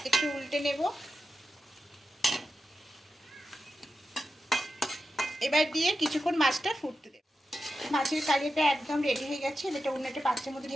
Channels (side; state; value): both; normal; correlation 0.90